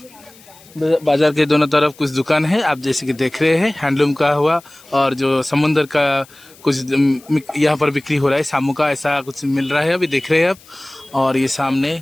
बाजार के दोनों तरफ कुछ दुकान है, आप जैसे कि देख रहे हैं हैंडलूम का हुआ और जो समुंदर का कुछ यहाँ पर बिक्री हो रहा है, शामू का ऐसा कुछ मिल रहा है अभी देख रहे हैं आप। और ये सामने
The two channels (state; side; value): noise; left; hiss, 25 dB below the sound